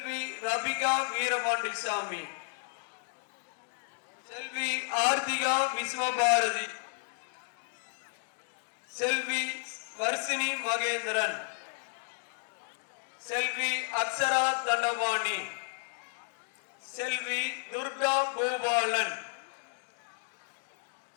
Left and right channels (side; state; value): right; silent; 56 dB below the other